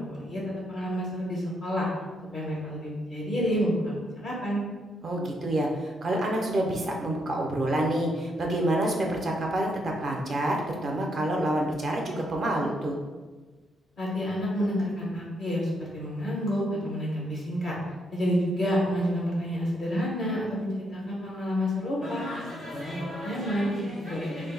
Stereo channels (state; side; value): normal; both; correlation 0.76